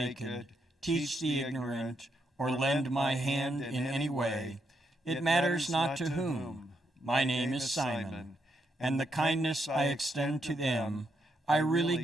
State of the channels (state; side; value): normal; both; correlation 0.80